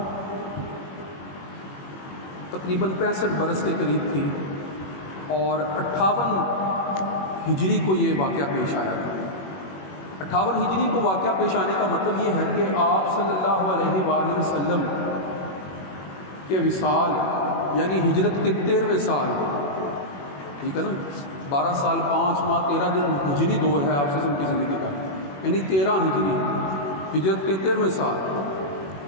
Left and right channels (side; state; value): right; late; 21 ms